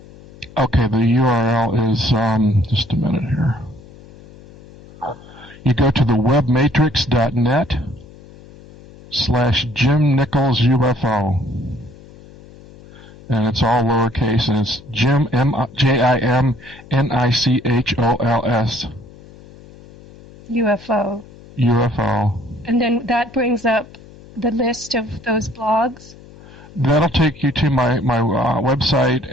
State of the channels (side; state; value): left; noise; hum, 21 dB below the sound